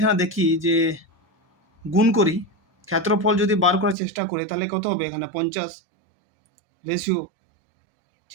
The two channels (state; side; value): drops out; left; at 4.0 s